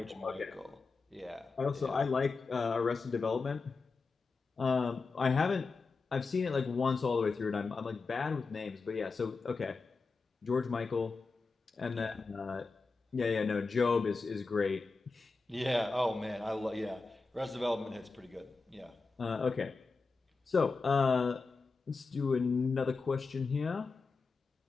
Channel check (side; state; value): right; quieter; 4.2 dB